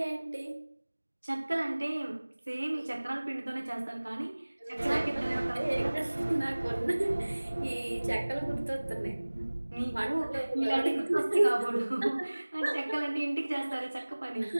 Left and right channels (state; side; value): inverted; both; correlation -1.00